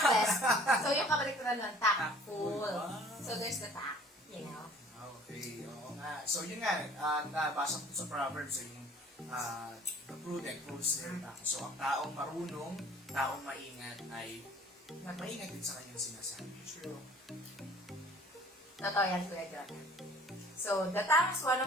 So yung kabaliktaran nun, tactful. Wow. So there's the tact, you know. Okay, oo nga. So yun nga, nabasa ko sa Proverbs, yung the prudent holds their tongue. So ang taong marunong, taong maingat ay maingat din sa kanyang sinasabi. True. Totoo yan, Kuya Jonah. So, the tongue is one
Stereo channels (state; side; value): normal; both; correlation 0.51